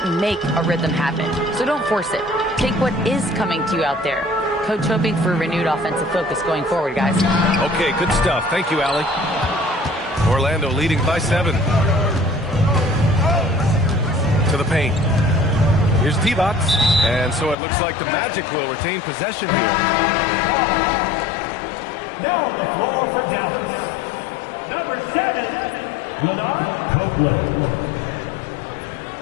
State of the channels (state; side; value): drops out; right; at 17.6 s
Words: make a rhythm happen, so don't force it. Take what is coming to you out there. Coach hoping for renewed offensive focus going forward, guys. Okay, good stuff. Thank you, Allie. Orlando leading by 7. To the paint. Here's T-Box. And so it looks like the Magic will retain possession here. Now on the floor for Dallas, number 7, Leonard Copeland.